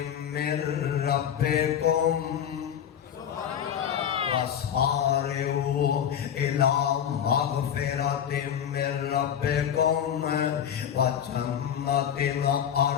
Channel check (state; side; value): quieter; right; 9.0 dB